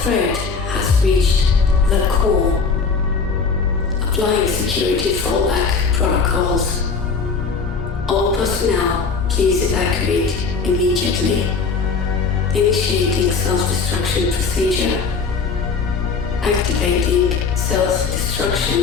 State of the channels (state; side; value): quieter; right; 5.0 dB